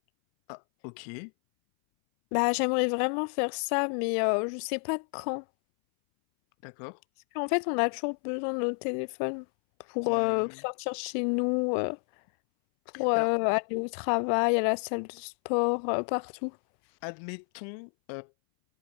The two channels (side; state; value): right; silent; 58 dB below the other